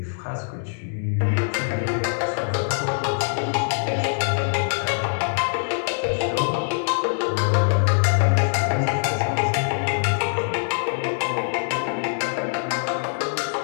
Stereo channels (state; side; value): silent; right; digital silence